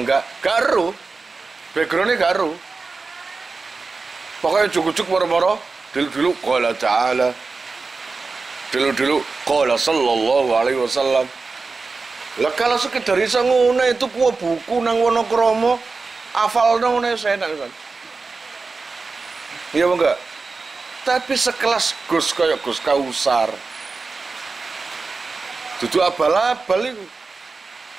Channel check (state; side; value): quieter; left; 4.2 dB